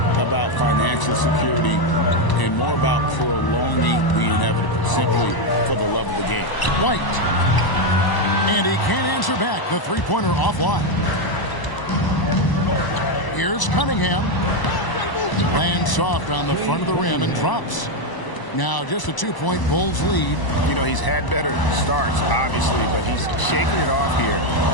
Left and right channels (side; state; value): right; late; 1.0 ms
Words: about financial security and more about prolonging the inevitable, simply for the love of the game. White. And he can't answer back. The three-pointer offline. Here's Cunningham. Lands soft on the front of the rim and drops. Now just a 2-point Bulls lead. You know, he's had better starts, obviously, but he's shaking it off here